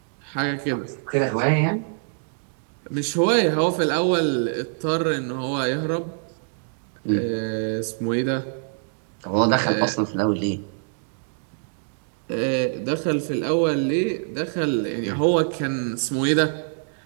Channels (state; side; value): silent; left; digital silence